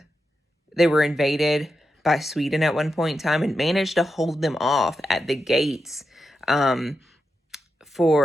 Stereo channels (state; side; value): normal; both; correlation 0.88